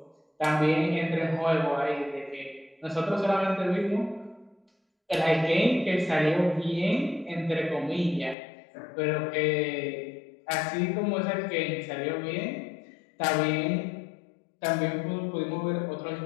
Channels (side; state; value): right; drops out; at 8.3 s